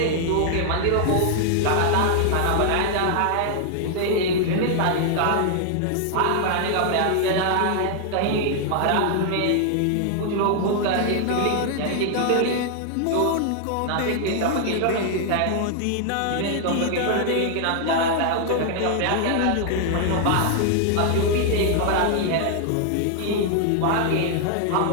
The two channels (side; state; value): both; different; correlation 0.00